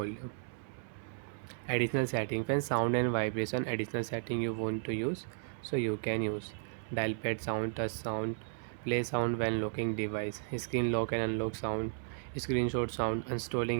Additional setting, when sound and vibration additional setting you want to use, so you can use dial pad sound, touch sound, play sound when locking device, screen lock and unlock sound, screenshot sound,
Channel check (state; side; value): silent; left; 55 dB below the other